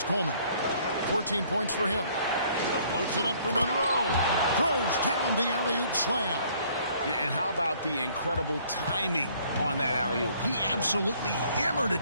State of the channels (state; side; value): inverted; both; correlation -0.60